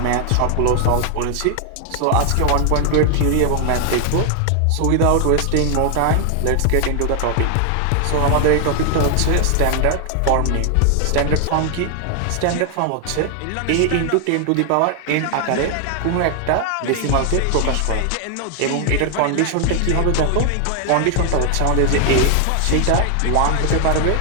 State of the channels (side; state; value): both; different; correlation 0.00